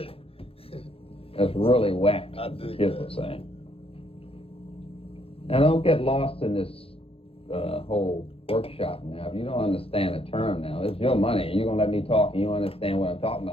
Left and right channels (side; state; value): right; late; 0.27 ms